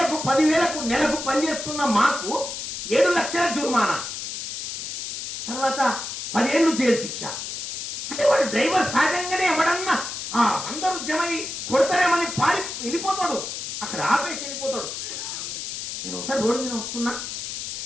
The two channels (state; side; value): noise; left; hiss, 6 dB below the sound